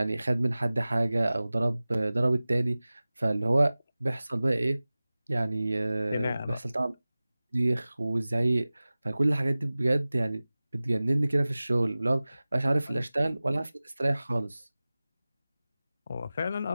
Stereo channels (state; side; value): inverted; both; correlation -0.98